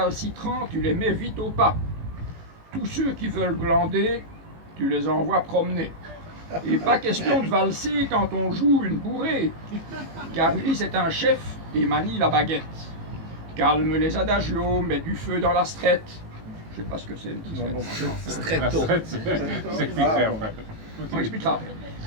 tu les mets vite au pas. Tous ceux qui veulent glander, tu les envoies promener. Et pas question de valser quand on joue une bourrée, car Ulysse est un chef et manie la baguette. Calme les adagios, mets du feu dans la strette. Je sais pas ce que c'est une petite strette. La strette, c'est expliquerait en fait. On expliquera après.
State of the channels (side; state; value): left; late; 18 ms